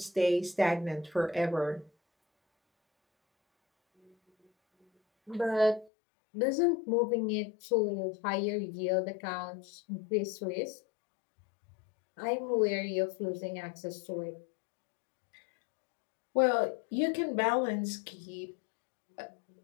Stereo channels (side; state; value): right; drops out; at 5.9 s